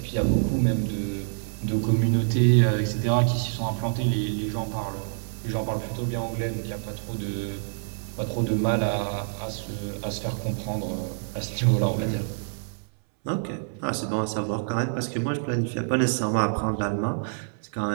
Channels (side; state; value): left; silent; 60 dB below the other